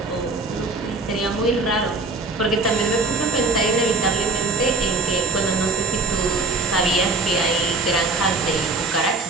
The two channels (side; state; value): left; quieter; 3.4 dB